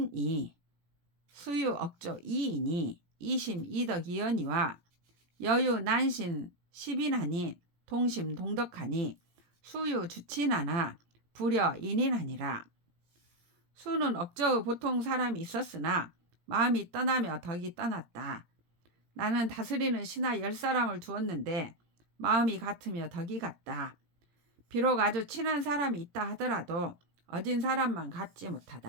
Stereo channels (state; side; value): late; left; 17 ms